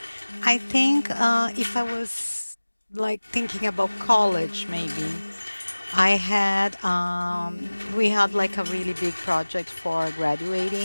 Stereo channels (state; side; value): inverted; both; correlation -1.00